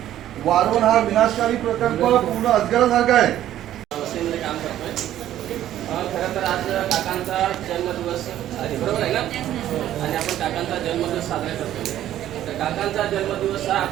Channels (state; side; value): quieter; left; 12.4 dB